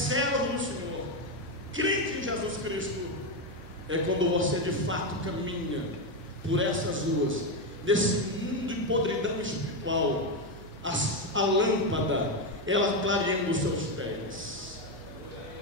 do Senhor, crente em Jesus Cristo, é quando você de fato caminha por essas ruas, nesse mundo de podridão espiritual, a lâmpada, ela clareando os seus pés.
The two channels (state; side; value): noise; right; hum, 19 dB below the sound